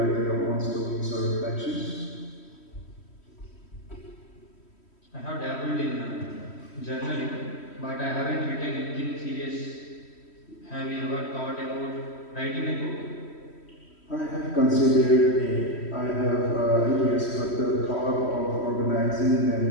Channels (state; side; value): late; right; 3.1 ms